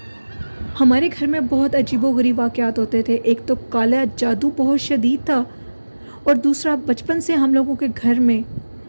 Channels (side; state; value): both; inverted; correlation -1.00